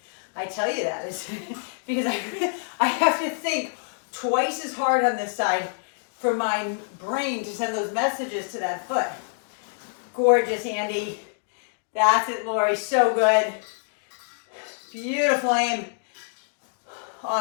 I tell you that is because I have to think twice as hard on this side for my brain to send those messages to that foot. Gorgeous, Andy. That's it, Lori. So good. Beautiful aim.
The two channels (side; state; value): right; silent; digital silence